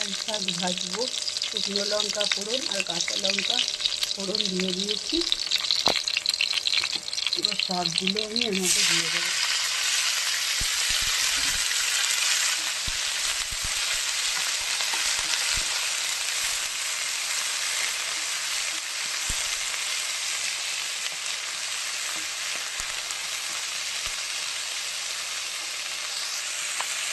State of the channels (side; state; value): both; identical; correlation 1.00